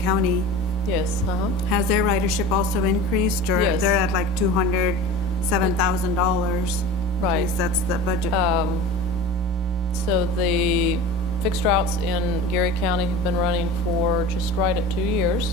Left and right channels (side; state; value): both; normal; correlation 0.35